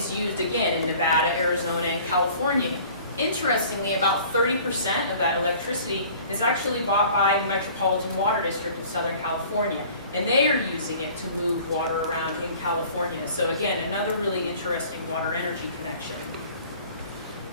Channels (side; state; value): both; inverted; correlation -0.49